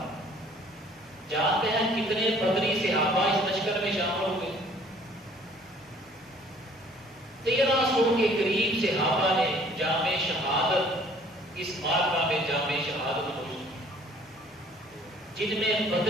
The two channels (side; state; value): both; normal; correlation 0.56